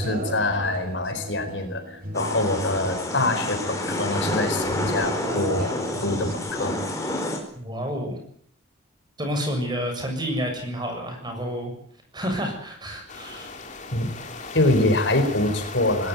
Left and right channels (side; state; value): both; normal; correlation 0.22